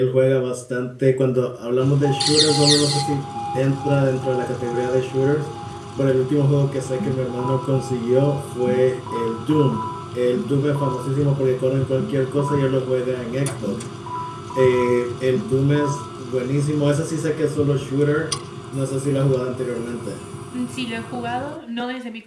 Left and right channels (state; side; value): identical; both; correlation 1.00